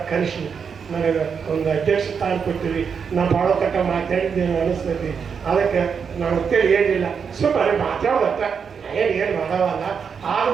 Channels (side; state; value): left; quieter; 6.4 dB